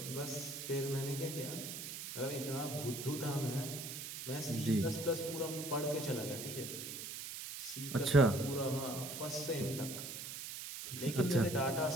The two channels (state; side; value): noise; right; hiss, 7 dB below the sound